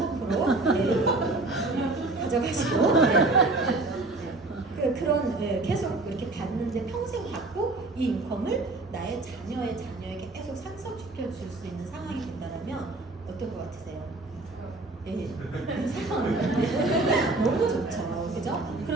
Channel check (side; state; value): left; quieter; 3.1 dB